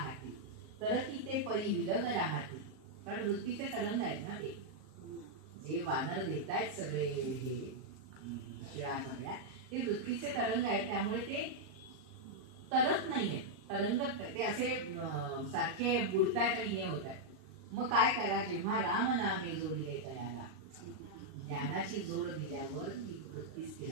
तर ती ते परी विलग राहती. कारण वृत्तीचे तरंग आहेत ना, ते जे वानर देतायत सगळे हे शिळा सगळ्या, ते वृत्तीचे तरंग आहेत, त्यामुळे ते तरत नाहीयेत, तरंगत ते असे सारखे बुडतायत आणि हे होत आहेत. मग काय करा, जेव्हा राम नामे जोडिले तयाला, ज्ञानाची जोड दिल्यावर ती वृत्ती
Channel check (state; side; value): late; left; 38 ms